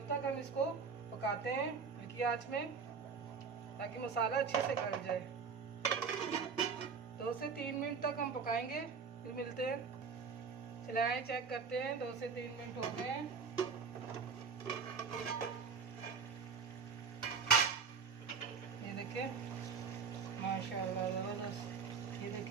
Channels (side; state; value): left; quieter; 5.7 dB